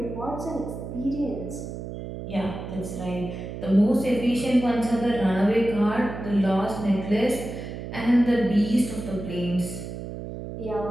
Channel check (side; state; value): right; noise; hum, 8 dB below the sound